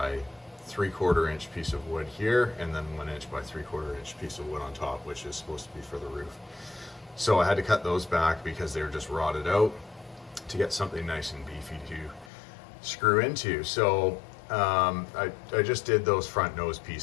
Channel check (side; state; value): right; drops out; at 12.3 s